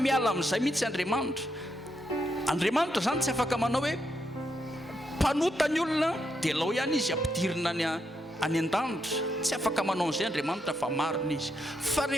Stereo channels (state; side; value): normal; both; correlation 0.81